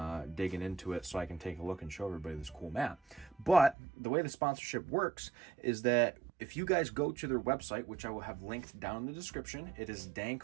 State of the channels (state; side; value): drops out; left; at 3.8 s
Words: digging into it so I can take a look and show everybody this cool mat. But the way the sponsorship works is that if you guys go to their website, which I will have linked down in the description, it is